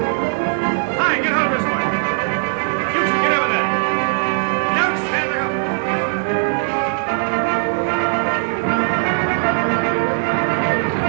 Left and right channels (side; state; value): left; silent; 66 dB below the other